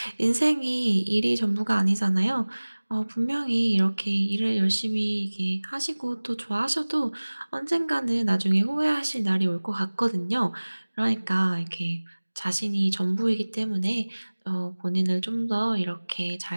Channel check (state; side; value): inverted; both; correlation -1.00